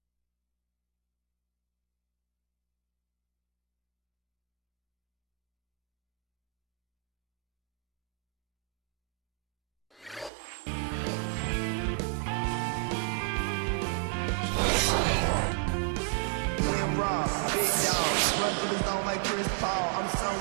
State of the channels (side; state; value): left; drops out; at 10.3 s